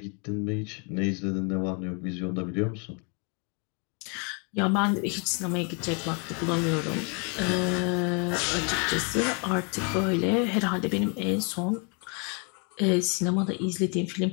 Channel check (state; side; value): quieter; right; 36.5 dB